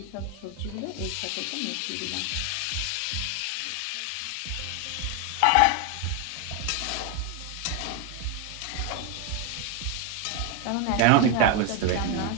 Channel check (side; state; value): both; different; correlation 0.01